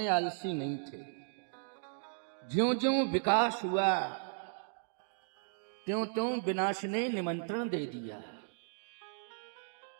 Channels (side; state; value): left; silent; digital silence